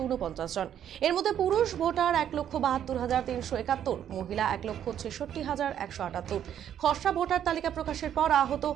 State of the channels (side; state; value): left; quieter; 9.9 dB